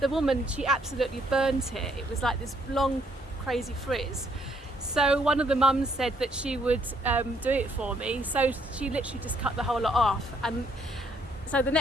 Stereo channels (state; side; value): normal; both; correlation 0.68